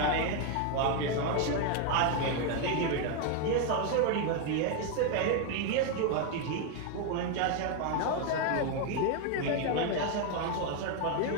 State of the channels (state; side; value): different; both; correlation 0.01